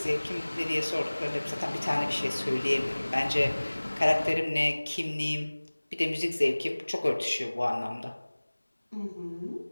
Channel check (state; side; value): inverted; both; correlation -1.00